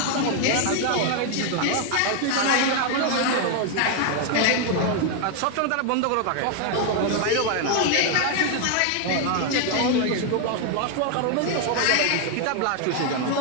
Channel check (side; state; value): both; different; correlation 0.01